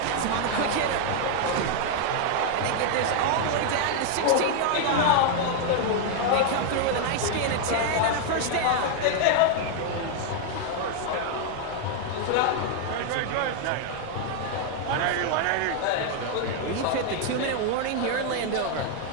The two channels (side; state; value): both; different; correlation 0.00